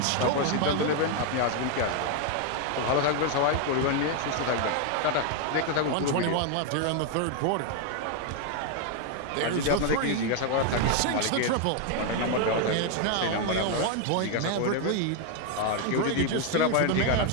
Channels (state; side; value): different; both; correlation 0.01